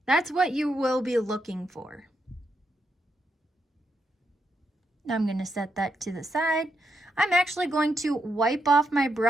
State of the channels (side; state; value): both; normal; correlation 0.82